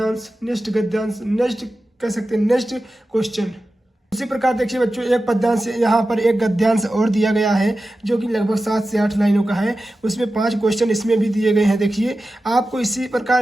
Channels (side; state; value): both; normal; correlation 0.93